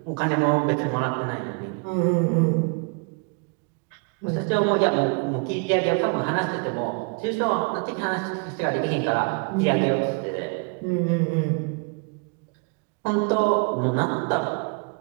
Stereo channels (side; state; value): left; quieter; 34.1 dB